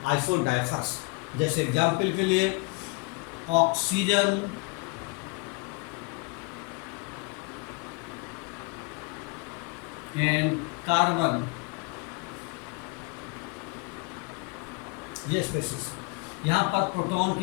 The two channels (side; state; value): right; quieter; 30.0 dB